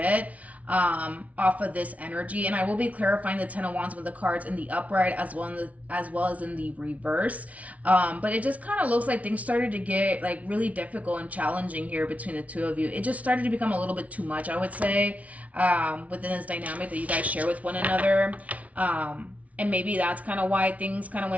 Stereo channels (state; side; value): late; left; 0.068 ms